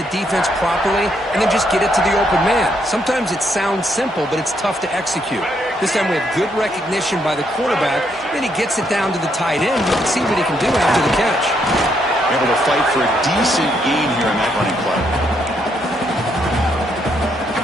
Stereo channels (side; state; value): both; normal; correlation 0.75